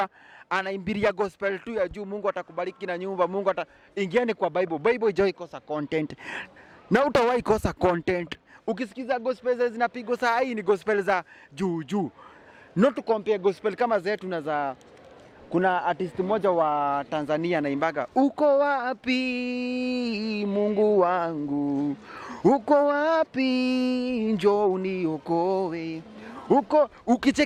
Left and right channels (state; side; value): identical; both; correlation 1.00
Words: anaimbiria gospel tu ya juu. Mungu atakubariki na nyumba, Mungu ingieni kwa Bible. Bible haijawahi kosa content. Na utawahi kosa content. Ukisikiza gospel zinapigwa saa hii ni gospel za juu. Not to compare gospel kama zetu na za kuna artist mmoja wa Tanzania anaimbaga uko wapi Mungu wangu, uko wapi njoo uniokoe.